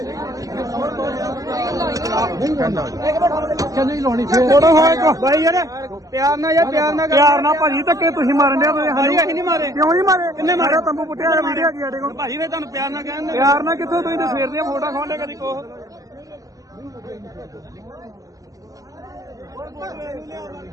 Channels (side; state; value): left; late; 0.17 ms